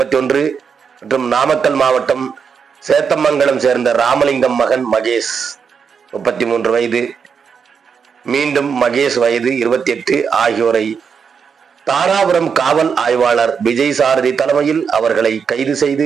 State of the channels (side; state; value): left; quieter; 6.4 dB